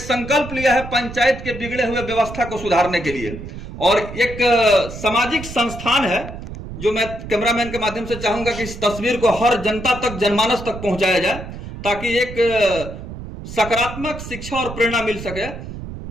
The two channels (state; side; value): noise; right; rumble, 10 dB below the sound